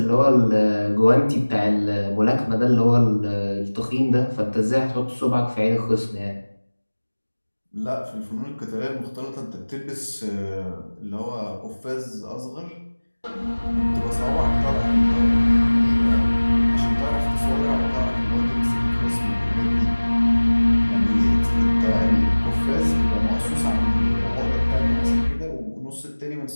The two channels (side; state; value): both; inverted; correlation -1.00